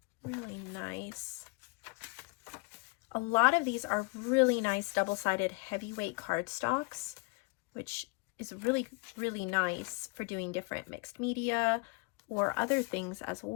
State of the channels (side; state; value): right; quieter; 29.7 dB